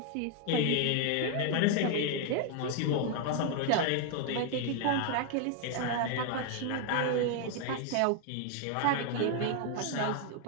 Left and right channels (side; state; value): both; different; correlation 0.00